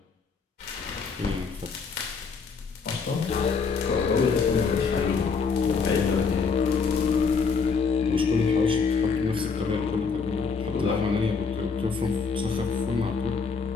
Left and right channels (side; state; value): right; quieter; 5.2 dB